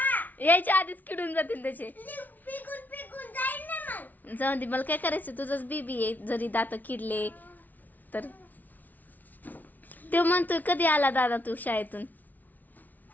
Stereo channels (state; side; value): late; right; 0.081 ms